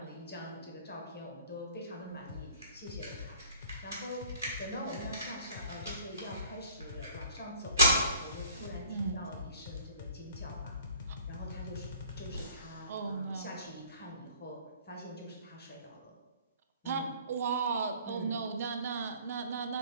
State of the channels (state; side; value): inverted; both; correlation -0.52